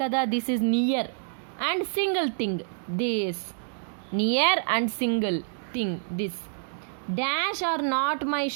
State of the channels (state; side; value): silent; left; digital silence